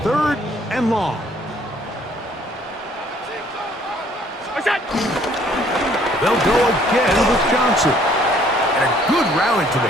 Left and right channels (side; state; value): both; normal; correlation 0.61